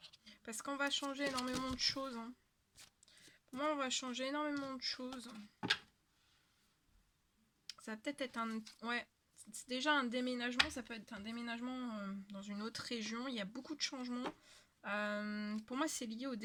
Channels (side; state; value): both; identical; correlation 1.00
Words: Parce qu'on va changer énormément de choses. Hein. Pour moi, on va changer énormément de choses. Ça va peut-être être un... Ouais, c'est déjà un déménagement. Ça peut être un déménagement dans une autre région. Il y a beaucoup de changements. Pour moi, c'est lié au